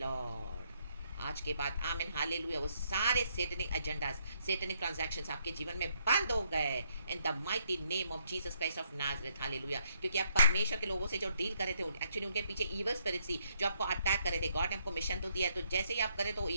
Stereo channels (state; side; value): inverted; both; correlation -0.72